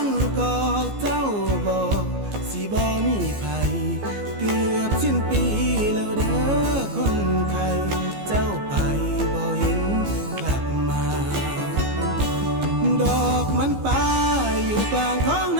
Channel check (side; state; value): left; late; 15 ms